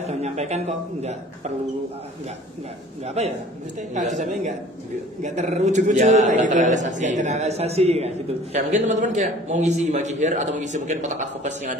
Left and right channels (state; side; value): normal; both; correlation 0.49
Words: sudah menyampaikan kok enggak perlu enggak apa ya maksudnya kalau disampaikan enggak terwujud-wujud kayak gitu enggak terrealisasi kayak gitu. Kayak mungkin teman-teman kayak mau ngisi Himaki Hire atau ngisi mungkin kotak advokasi yang